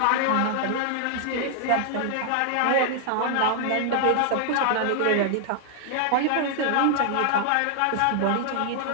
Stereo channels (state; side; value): different; both; correlation 0.00